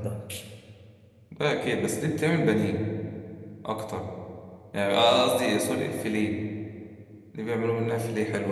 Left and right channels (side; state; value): both; identical; correlation 1.00